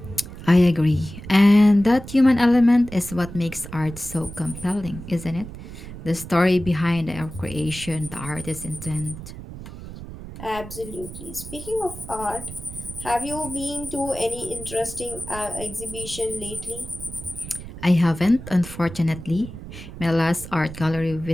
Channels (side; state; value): right; noise; rumble, 12 dB below the sound